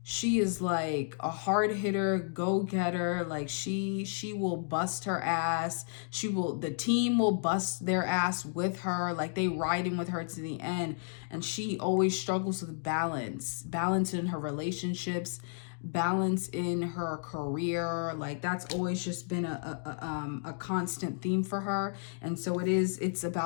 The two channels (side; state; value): right; silent; digital silence